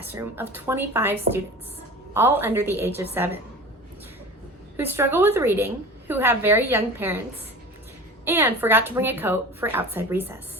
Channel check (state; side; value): normal; both; correlation 0.36